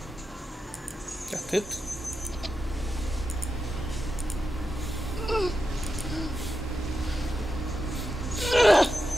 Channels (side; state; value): both; normal; correlation 0.88